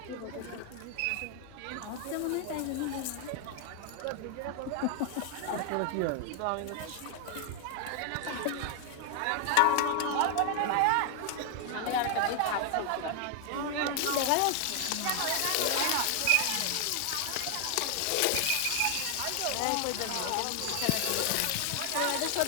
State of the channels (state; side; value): different; both; correlation 0.01